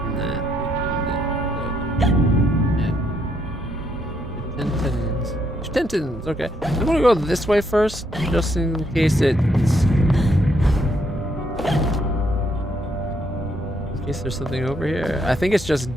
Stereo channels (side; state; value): both; normal; correlation 0.74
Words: Tentons. Okay, I'm gonna go this way first, just in case it's. In case there's something over here. I think it's just